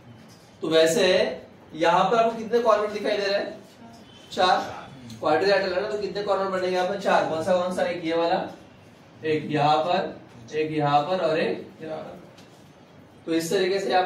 तो वैसे यहाँ पर आपको कितने कॉर्नर दिखाई दे रहे हैं, 4। क्वाड्रिलेटरल है ना, तो कितने कॉर्नर बनेंगे यहाँ पर, 4। कौन सा, एक ये वाला, एक यहाँ पर, एक यहाँ पर और एक यहाँ पर। तो इस तरीके से यहाँ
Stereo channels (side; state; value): both; identical; correlation 1.00